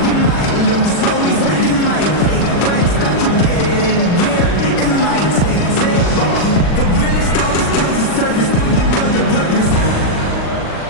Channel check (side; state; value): right; late; 40 ms